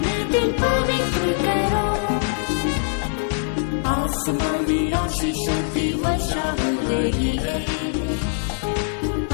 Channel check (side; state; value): right; silent; 64 dB below the other